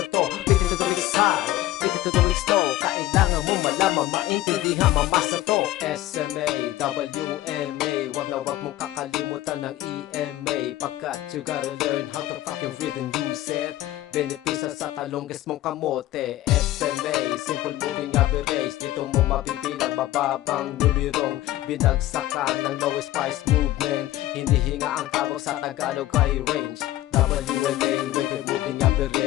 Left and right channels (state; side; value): quieter; right; 15.3 dB